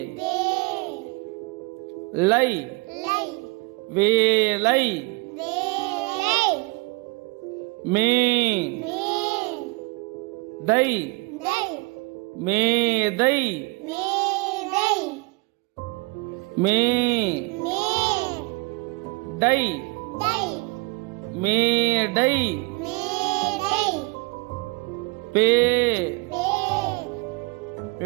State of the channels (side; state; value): left; quieter; 26.9 dB